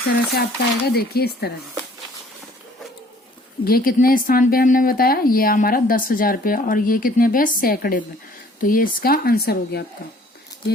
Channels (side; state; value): both; normal; correlation 0.56